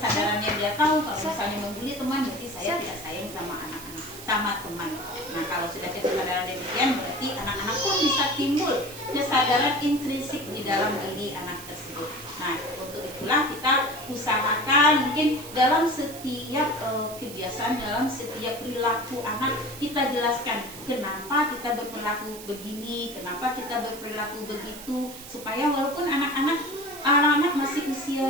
dia tahu kalau misalnya membuli teman berarti saya tidak sayang sama anak-anak, sama teman. Nah, kalau sudah kesadaran demikian berarti anak-anak pun bisa timbul kesadaran intrinsik di dalam diri anak tersebut. Nah, untuk itulah kita usahakan mungkin dalam setiap kebiasaan, dalam setiap perilaku anak kita jelaskan kenapa kita berperilaku begini, kenapa kita berperilaku begitu, supaya walaupun anak-anak masih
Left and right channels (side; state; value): right; noise; hiss, 14 dB below the sound